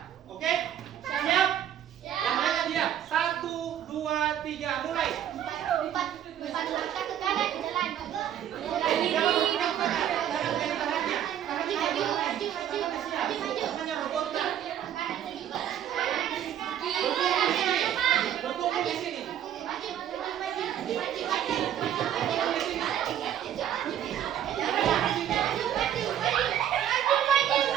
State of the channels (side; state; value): left; quieter; 10.4 dB